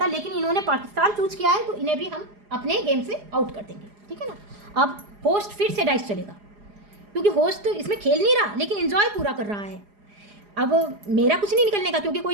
लेकिन इन्होंने पाकिस्तान चूज किया है, तो इन्हें भी हम अपने गेम से आउट कर देंगे, ठीक है ना। अब होस्ट फिर से डाइस चलेगा, क्योंकि होस्ट इसमें खेल नहीं रहा लेकिन एंजॉय पूरा कर रहा है। अब मेरा कुछ नहीं निकलने का, क्योंकि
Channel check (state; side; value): late; left; 4.9 ms